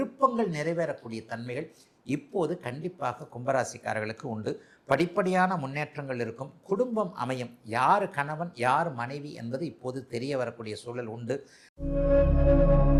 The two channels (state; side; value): identical; both; correlation 1.00